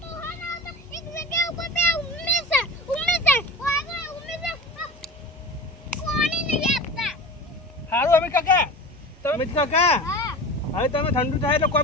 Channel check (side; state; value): both; normal; correlation 0.34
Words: સારું અમીર કાકા અમીર કાકા હવે તમે ઠંડુ થાય એટલે